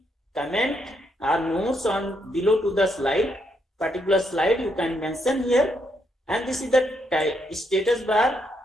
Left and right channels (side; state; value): both; normal; correlation 0.77